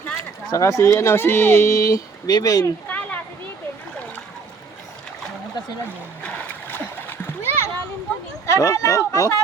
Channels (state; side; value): quieter; left; 4.9 dB